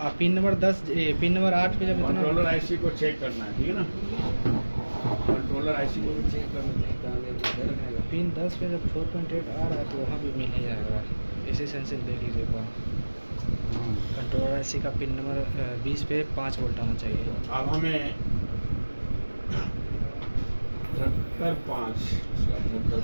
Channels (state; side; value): inverted; both; correlation -1.00